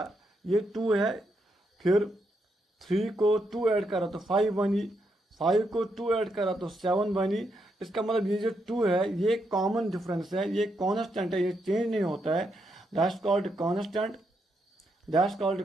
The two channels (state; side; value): normal; both; correlation 0.80